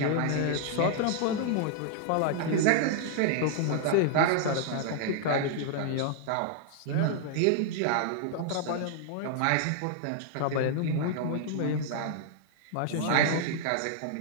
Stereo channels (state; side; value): different; both; correlation -0.01